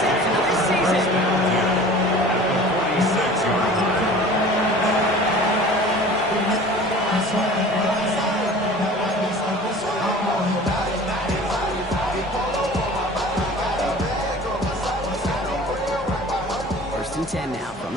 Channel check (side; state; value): both; normal; correlation 0.43